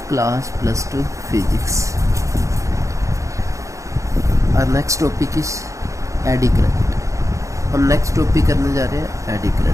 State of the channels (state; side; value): late; left; 0.15 ms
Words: class plus 2 physics. Our next topic is eddy current. हम next topic करने जा रहे हैं eddy